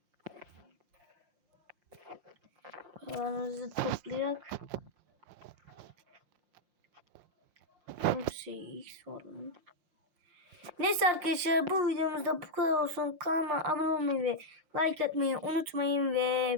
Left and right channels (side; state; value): left; late; 5.7 ms